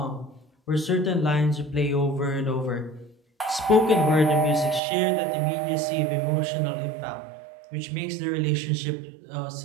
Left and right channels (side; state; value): left; drops out; at 4.8 s